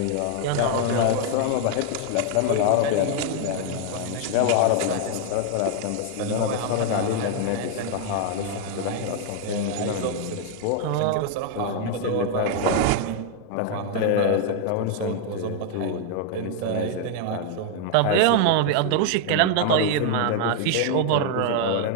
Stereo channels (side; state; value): both; different; correlation 0.00